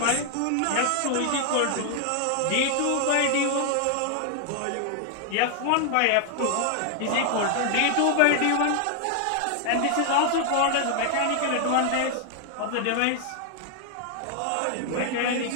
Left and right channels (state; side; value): different; both; correlation 0.00